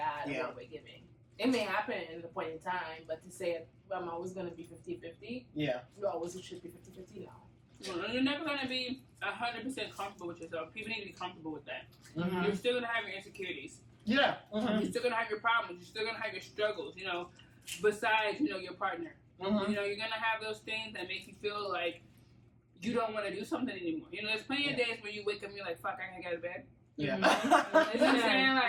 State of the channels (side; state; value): both; identical; correlation 1.00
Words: and what we're giving. It may happen at a point in time, but to say I'm always gonna be 50-50, Yeah. you always should be 50-50 now. Well, you're never going to be 100% comfortable with yourself. People need to be comfortable with that. Mm-hmm. You're still going to have your insecurities. Yeah. Mm-hmm. You're still going to have your problems. You're still going to have your struggles, you know, besides, you know, your partner. Mm-hmm. You know, you're going to have those things that make you feel like you don't want to do something anymore. You know, there's plenty of days where you wake up and you're like, fuck, I can't get out of bed. Yeah. You know what I'm saying?